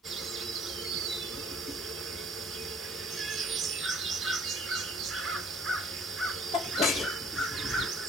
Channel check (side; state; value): both; normal; correlation 0.54